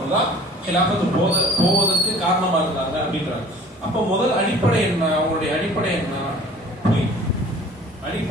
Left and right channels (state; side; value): normal; both; correlation 0.47